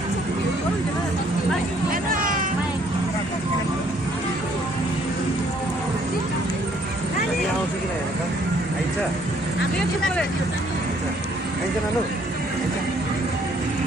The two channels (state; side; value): normal; both; correlation 0.64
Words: आउँछ कि हेर त आइन्छ आइन्छ नानु